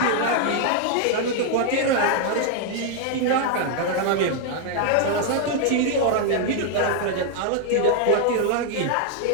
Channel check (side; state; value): both; different; correlation 0.00